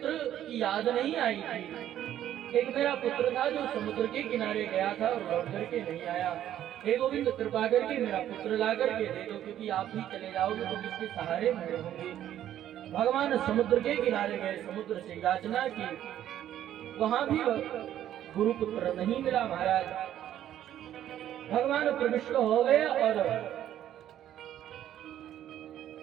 की याद नहीं आई थी। एक मेरा पुत्र था जो समुद्र के किनारे गया था और लौट करके नहीं आया। हे गोविंद कृपा करके मेरा पुत्र ला करके दे दो, क्योंकि आप ही चले जाओगे तो किसके सहारे मैं रहूंगी। भगवान समुद्र के किनारे गए, समुद्र से याचना की, वहां भी गुरु पुत्र नहीं मिला। महाराज भगवान प्रविष्ट हो गए और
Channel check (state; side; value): quieter; left; 11.5 dB